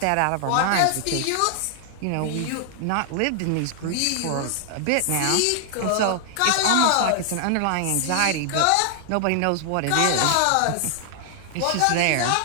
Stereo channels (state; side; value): different; both; correlation 0.00